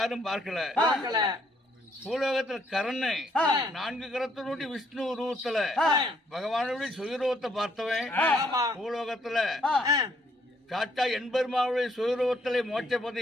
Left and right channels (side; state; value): both; normal; correlation 0.68